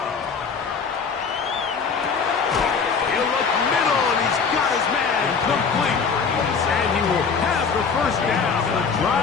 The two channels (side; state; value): right; quieter; 5.6 dB